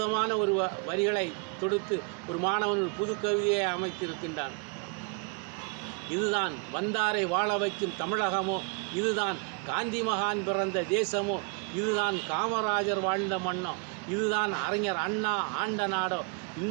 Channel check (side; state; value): left; quieter; 35.4 dB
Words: ஒரு வரிகளை தொடுத்து ஒரு மாணவன் ஒரு புது கவிதையை அமைத்திருக்கின்றான். இதுதான் வந்தாரை வாழ வைக்கும் தமிழகமோ, இதுதான் காந்தி மகான் பிறந்த தேசமோ, இதுதான் காமராஜர் வாழ்ந்த மண்ணோ, இதுதான் அறிஞர் அண்ணா ஆண்ட நாடோ,